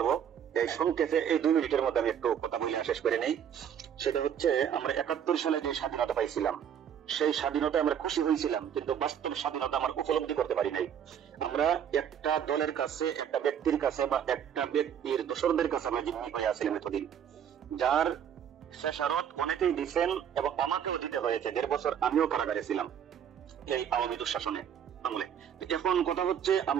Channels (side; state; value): left; quieter; 8.8 dB